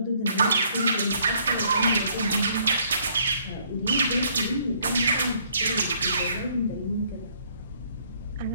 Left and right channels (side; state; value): both; inverted; correlation -0.65